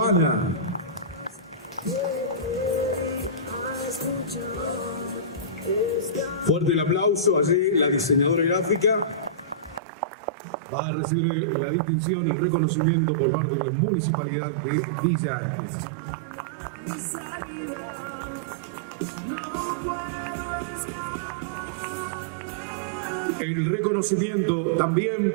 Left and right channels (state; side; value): drops out; left; at 9.8 s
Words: Fuerte el aplauso. Allí la diseñadora gráfica va a recibir la distinción, el reconocimiento por parte de la Municipalidad de Villa Ancla. El reconocimiento